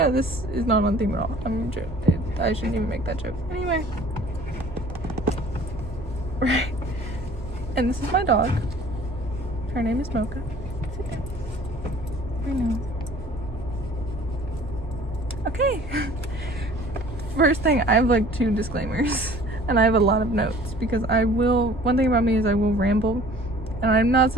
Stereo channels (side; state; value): both; normal; correlation 0.50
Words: it, this is not on theme at all. I shouldn't even make that joke. Anyway. Right. And this is my dog. Her name is Mocha. Sit down. I know. Okay. First thing, I have like 2 disclaimers. And I have a lot of notes because one thing about me is I will ramble. And I'm not